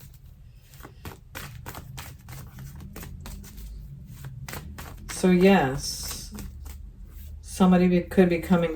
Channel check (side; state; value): both; identical; correlation 1.00